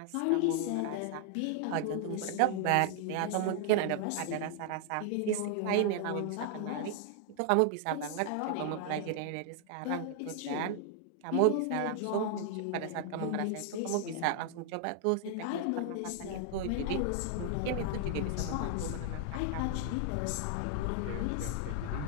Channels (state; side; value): different; both; correlation 0.00